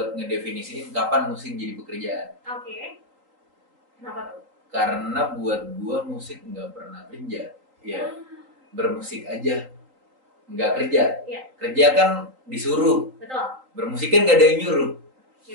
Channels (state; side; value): late; left; 3.8 ms